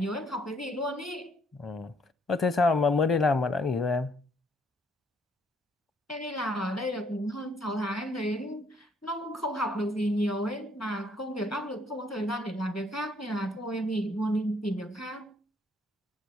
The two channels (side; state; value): both; normal; correlation 0.67